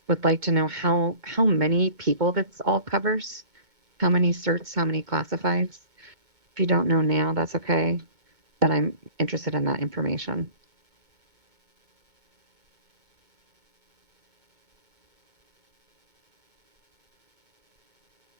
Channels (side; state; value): left; late; 2.2 ms